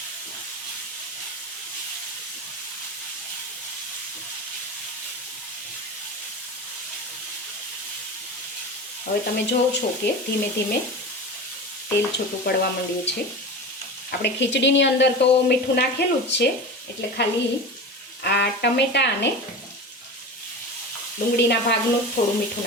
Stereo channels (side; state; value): both; normal; correlation 0.29